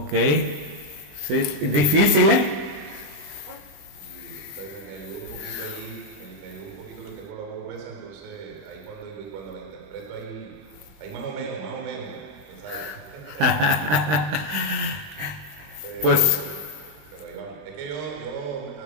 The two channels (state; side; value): late; left; 20 ms